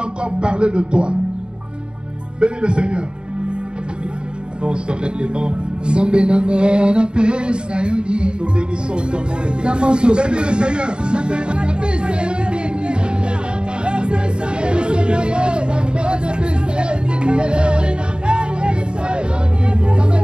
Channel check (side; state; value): left; late; 0.051 ms